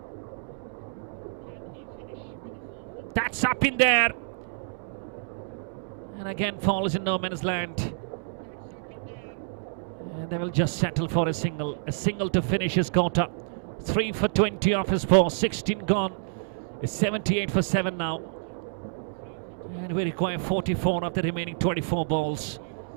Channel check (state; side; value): silent; left; digital silence